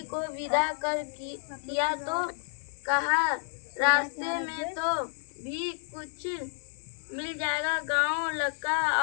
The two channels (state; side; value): silent; right; 58 dB below the other